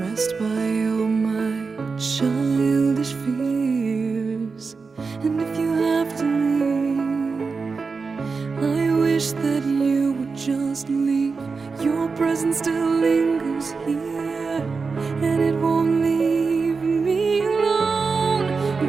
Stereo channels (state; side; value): quieter; left; 4.7 dB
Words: by all my childish fears. And if you have to leave, I wish that you would just leave. Your presence still lingers here, and it won't leave me alone.